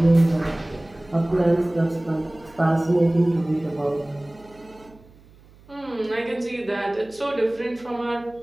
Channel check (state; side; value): noise; right; hum, 26 dB below the sound